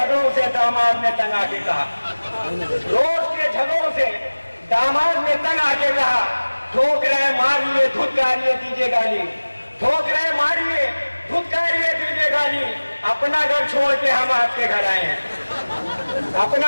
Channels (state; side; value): inverted; both; correlation -1.00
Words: से दामाद ने तंग आके कहा, रोज के झगड़ों से दामाद ने तंग आके कहा, ठोक रहे मारिए धुतकारिए दीजिए गाली, ठोक रहे मारिए धुतकारिए दीजिए गाली, अपना घर छोड़ के हम आपके घर आए हैं,